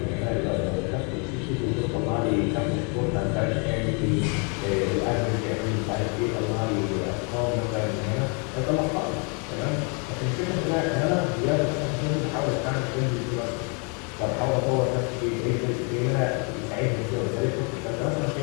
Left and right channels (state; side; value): quieter; right; 36.1 dB